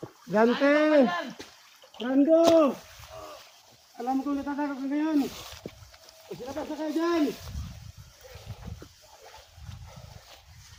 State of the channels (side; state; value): both; identical; correlation 1.00